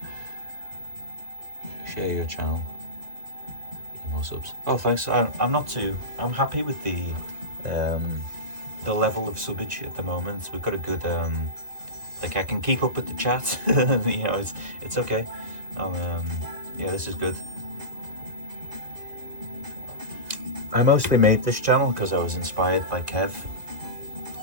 Share your channel. Get more subs. Oh, thanks. I'm happy with the level of subbage at the moment. We've got a good like I can keep up with the chat. You know, it's okay. Yeah, this is good. I mostly made this channel because I was inspired by Kev,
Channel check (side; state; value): left; late; 2.0 ms